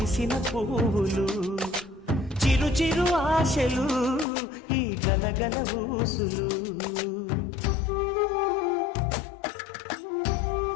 పువ్వులు చిరు చిరు ఆశలు ఈ గలగల ఊసులు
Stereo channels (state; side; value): drops out; right; at 4.2 s